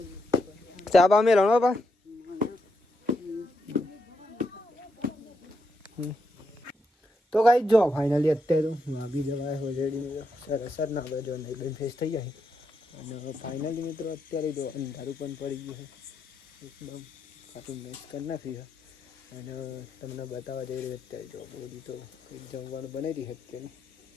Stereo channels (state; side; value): normal; both; correlation 0.82